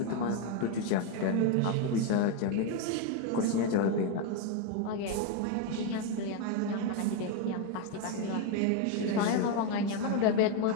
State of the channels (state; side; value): different; both; correlation 0.02